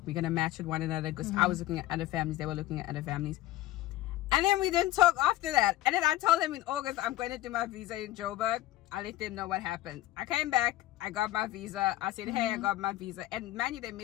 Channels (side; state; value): right; quieter; 15.6 dB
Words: we're gonna match with one another, because I was looking at other families, they were looking at other families. And then we didn't talk after that. And then I told them in August I'm going to do my visa in Joburg. I let them know what happened. I came back, I got my visa. I said, hey, I got my visa. And man, they